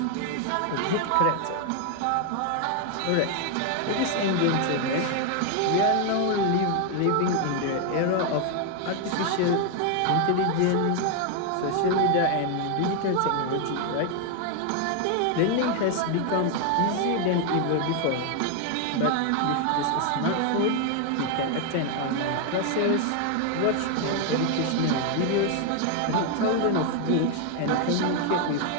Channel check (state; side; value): different; both; correlation 0.01